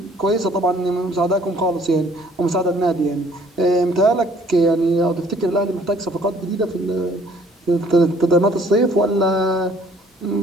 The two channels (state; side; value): normal; both; correlation 0.58